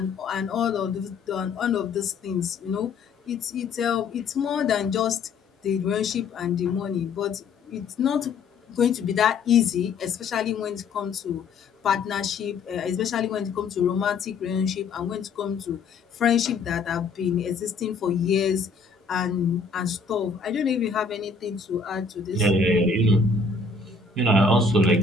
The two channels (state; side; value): quieter; right; 4.5 dB